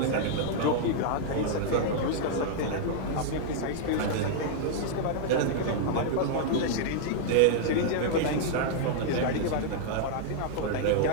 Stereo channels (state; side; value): different; both; correlation -0.01